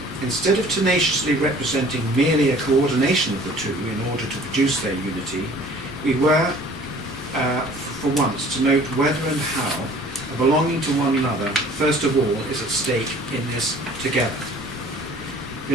instead of tenaciously representing merely a coordination of the two in order to produce their unity, we were, for once, to note whether and how a belonging to one another, first of all, is at stake in this together.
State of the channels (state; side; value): normal; both; correlation 0.51